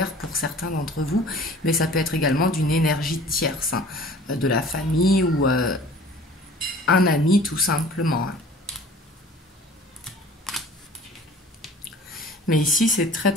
pour certains d'entre vous, mais ça peut être également d'une énergie tierce, hein, de la famille ou un ami tout simplement. Hein. Mais ici, c'est très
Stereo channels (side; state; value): both; normal; correlation 0.47